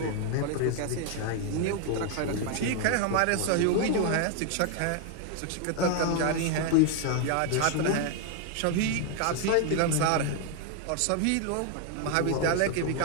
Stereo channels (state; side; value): different; both; correlation 0.01